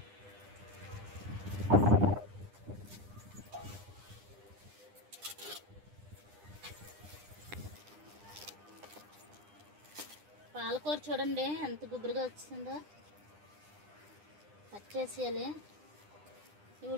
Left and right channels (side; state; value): left; late; 9.9 ms